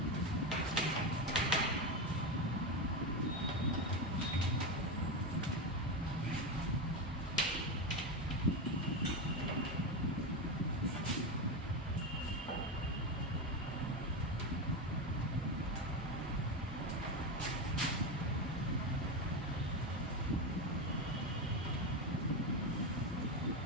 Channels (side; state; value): both; normal; correlation 0.15